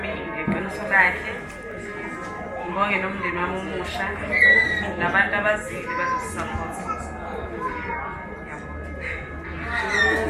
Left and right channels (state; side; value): identical; both; correlation 1.00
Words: ngeqiniso lakhe. Ngibonge nomndeni wami omusha nabantu abazili bazosisapota.